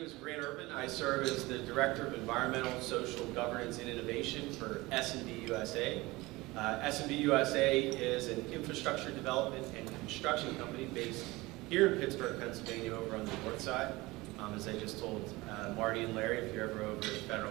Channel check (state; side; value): quieter; left; 21.3 dB